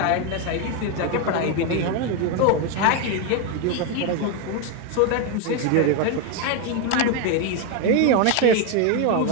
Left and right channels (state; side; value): different; both; correlation 0.02